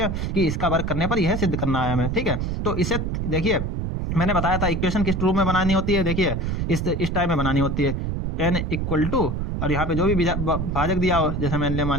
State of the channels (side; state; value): right; noise; rumble, 2 dB below the sound